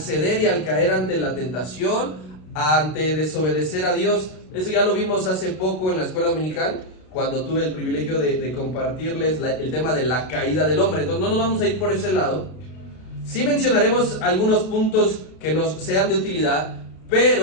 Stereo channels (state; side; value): late; right; 32 ms